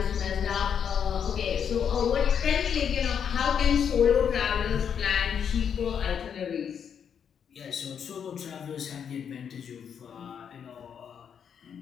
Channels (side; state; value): right; quieter; 7.8 dB